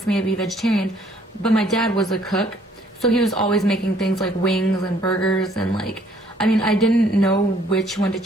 me to be vegetarian. But my dad was a cook, so he was always making things like wings and burgers, and like, I mean, I didn't know which one to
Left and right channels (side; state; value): both; normal; correlation 0.63